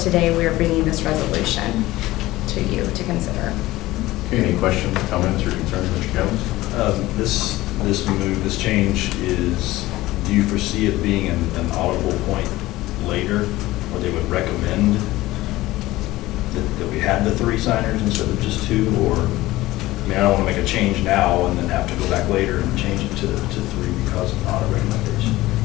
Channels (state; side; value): quieter; right; 17.7 dB